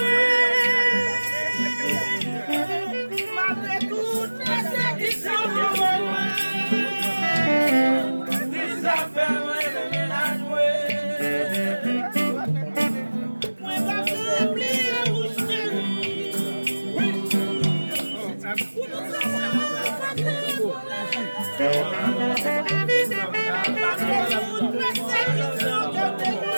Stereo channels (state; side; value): inverted; both; correlation -1.00